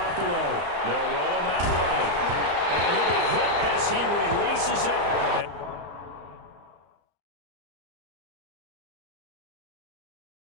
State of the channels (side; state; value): left; late; 34 ms